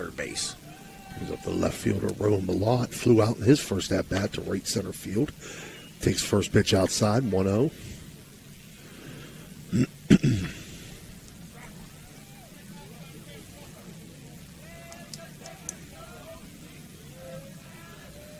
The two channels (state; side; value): identical; both; correlation 1.00